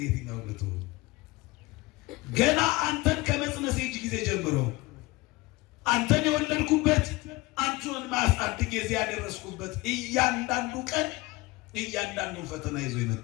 የትኛውን ልትሆን? ገና አንተን ከመጽነሴ ጊዜ ጀምሮ አንተን የወለድኩበት አንተን ማሳደግ እዚህ ያደረስኩበት እያንዳንዱ ቀን እያንዳንዱን ፈተና ይዞ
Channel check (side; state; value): right; quieter; 21.6 dB